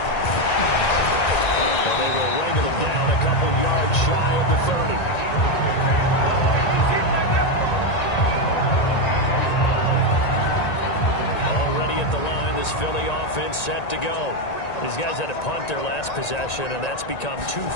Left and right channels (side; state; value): right; late; 1.9 ms